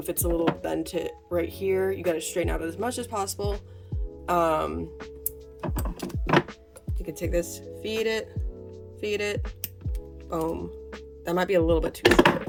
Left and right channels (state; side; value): identical; both; correlation 1.00